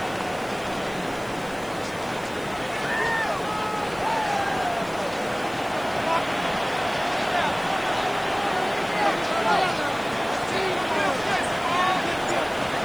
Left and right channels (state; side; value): noise; left; hiss, 22 dB below the sound